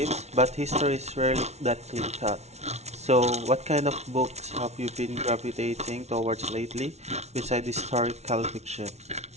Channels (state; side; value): late; left; 0.32 ms